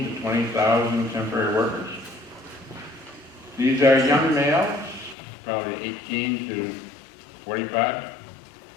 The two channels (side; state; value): right; drops out; at 5.2 s